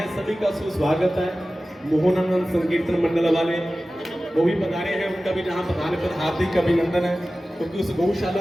सभी का सुस्वागत है। मोहनानंद संकीर्तन मंडल वाले वो भी पधारे हैं, उनका भी जहां पधारे पर हार्दिक अभिनंदन है, क्योंकि उस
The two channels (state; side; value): normal; both; correlation 0.96